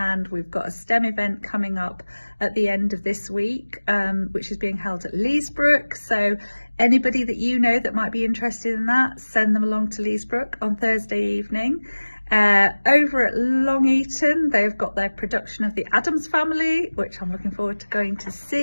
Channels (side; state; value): both; inverted; correlation -1.00